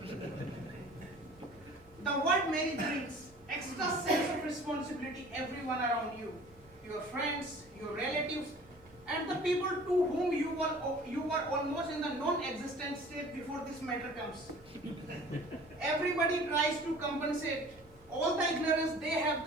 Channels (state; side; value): noise; right; hum, 27 dB below the sound